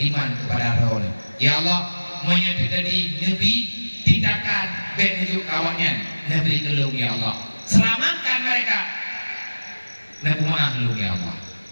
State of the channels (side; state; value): both; inverted; correlation -1.00